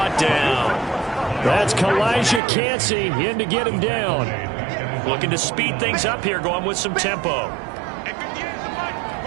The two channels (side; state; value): left; drops out; at 2.4 s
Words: down. That's Kalijah Cansey in to get him down. Looking to speed things up here, going with some tempo.